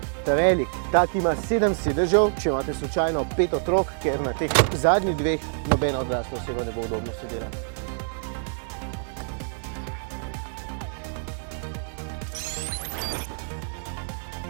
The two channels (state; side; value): silent; left; digital silence